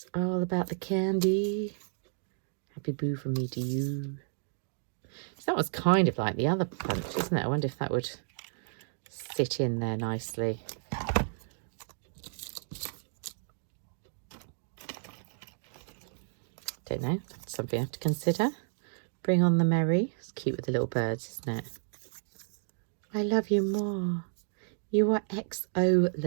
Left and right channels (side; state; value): left; silent; digital silence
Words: all about the candy. Happy boo from me to you. So that was kind of like the other punch, isn't it? I wonder if that would sit in there nicely. Don't know, that's something I have to consider. Bring on the Merry. It's cute with the little birds, isn't it? I love you more. You are